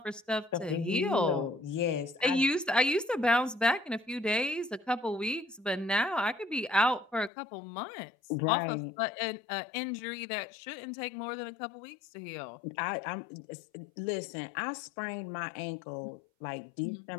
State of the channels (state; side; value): drops out; right; at 7.3 s